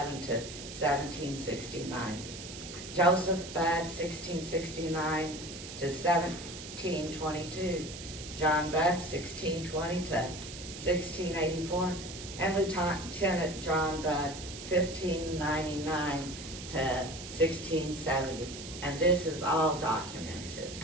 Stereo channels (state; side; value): noise; right; hiss, 11 dB below the sound